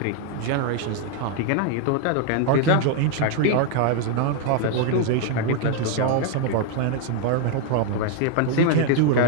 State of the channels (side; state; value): both; different; correlation 0.00